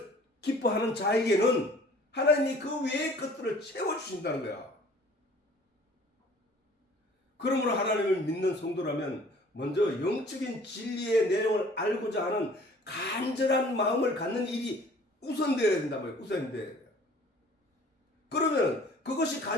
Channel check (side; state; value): both; normal; correlation 0.51